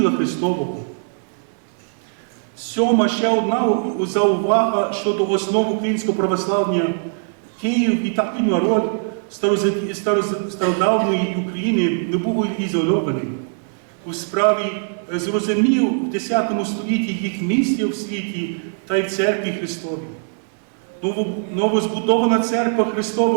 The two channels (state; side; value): silent; left; digital silence